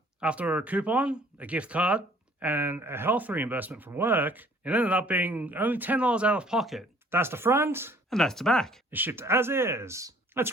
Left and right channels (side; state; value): both; normal; correlation 0.56